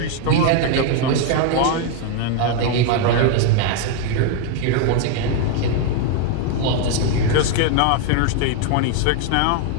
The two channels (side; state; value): both; different; correlation 0.01